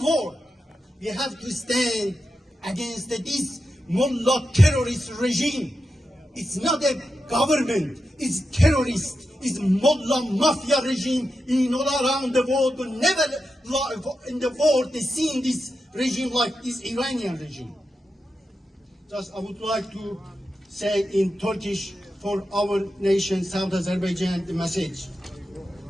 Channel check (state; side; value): normal; both; correlation 0.89